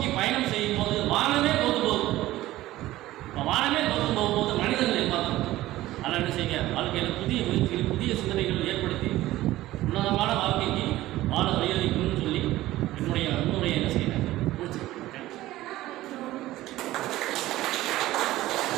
பயணம் செய்யும் போது வானமே தோத்து போகும். வானமே தோத்து போகும்போது மனிதர்களை பார்க்கணும். அதனால் என்ன செய்யுங்க, வாழ்க்கையில் புதிய முயற்சிகள் புதிய சிந்தனைகள் ஏற்படுத்தி உன்னதமான வாழ்க்கைக்கு வாழ வழியளிக்கணும்னு சொல்லி என்னுடைய என்ன செய்யறேன் முடிச்சு.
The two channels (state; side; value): quieter; left; 16.1 dB